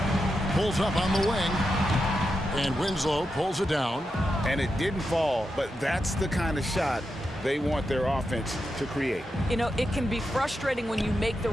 Pulls up on the wing. And Winslow pulls it down. And it didn't fall, but that's the kind of shot they want their offense to create. You know, it can be frustrating when you make the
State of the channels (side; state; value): both; normal; correlation 0.87